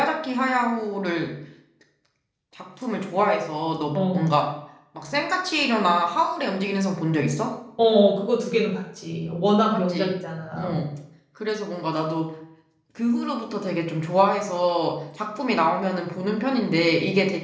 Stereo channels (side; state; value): both; identical; correlation 1.00